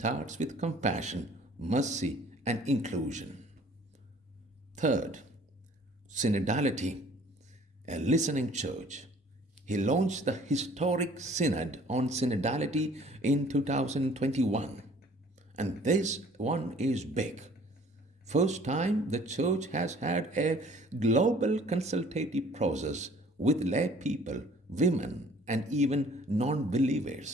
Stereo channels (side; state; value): both; normal; correlation 0.53